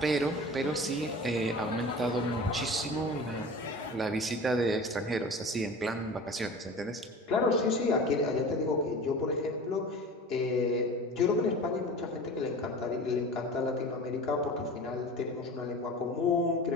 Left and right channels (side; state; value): both; normal; correlation 0.37